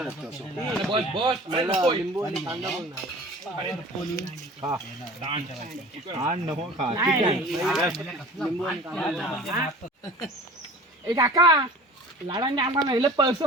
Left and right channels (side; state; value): both; normal; correlation 0.42